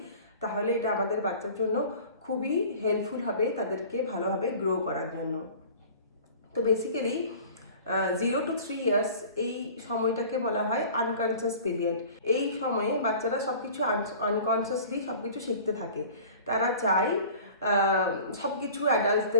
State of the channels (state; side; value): inverted; both; correlation -0.43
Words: তাহলে এটা আমাদের বাচ্চার জন্য খুবই হেল্পফুল হবে তাদেরকে ভালোভাবে গ্রো করার জন্য। তো বেসিক্যালি 0 to 3 ইয়ার্স এই সময়টাকে বলা হয় আনকনসিয়াস পিরিয়ড। এই সময়ে বাচ্চারা সব কিছু আনকনসিয়াসলি সব কিছু শিখতে থাকে। তারা চায় সব কিছু